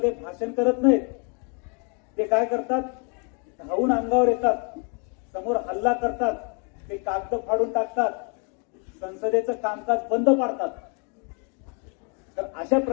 भाषण करत नाहीत. ते काय करतात, धावून अंगावर येतात, समोर हल्ला करतात, ते कागद फाडून टाकतात, संसदेचं कामकाज बंद पाडतात. तर अशा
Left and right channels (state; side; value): quieter; right; 37.6 dB